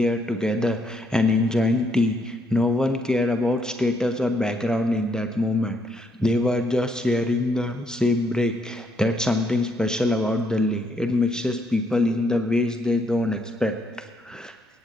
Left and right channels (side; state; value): both; normal; correlation 0.73